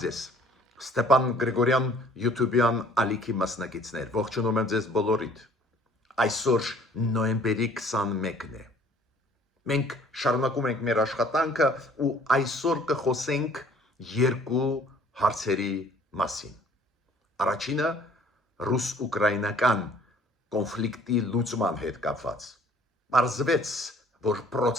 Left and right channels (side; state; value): both; normal; correlation 0.55